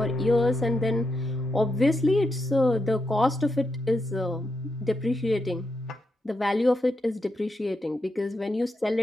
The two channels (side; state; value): both; normal; correlation 0.84